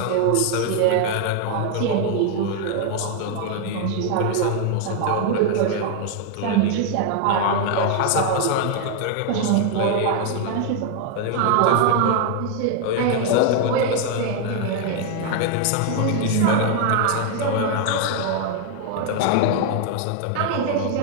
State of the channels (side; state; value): both; different; correlation 0.01